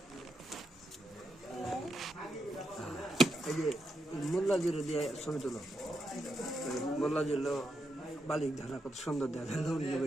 এই যে মোল্লা জিরো দিয়ে ছবি তুলো। মোল্লা জিরো বালিক ধারা কত সুন্দর দেখা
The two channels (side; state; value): both; normal; correlation 0.83